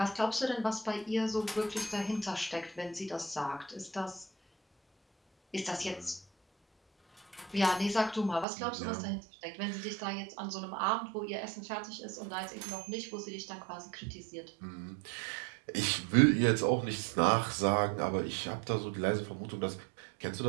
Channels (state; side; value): drops out; left; at 8.5 s